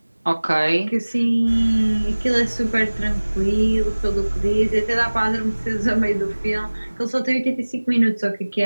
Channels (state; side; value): inverted; both; correlation -1.00